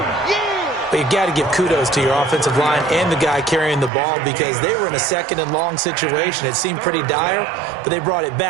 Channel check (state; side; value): drops out; left; at 3.9 s